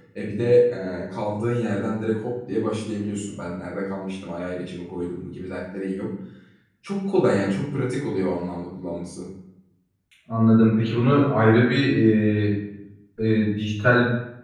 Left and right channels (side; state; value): both; identical; correlation 1.00